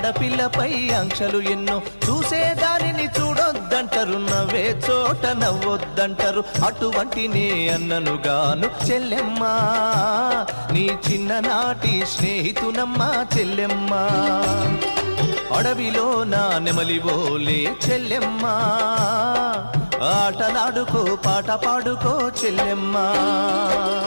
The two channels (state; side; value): inverted; both; correlation -1.00